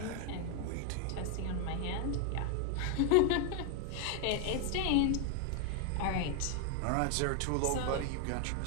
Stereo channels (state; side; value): different; both; correlation 0.00